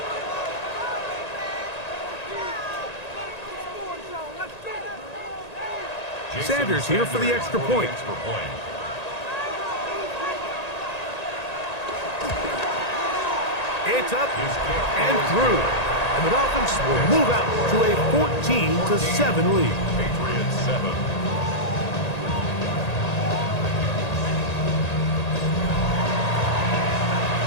Sanders here for the extra point. It's up and through. And the Dolphins will move out to a 14-7 lead. Patriots 7.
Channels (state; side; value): late; right; 1.9 ms